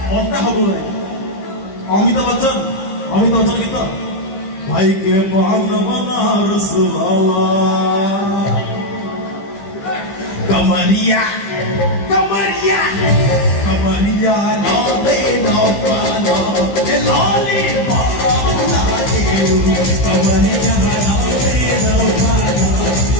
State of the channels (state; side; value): late; right; 15 ms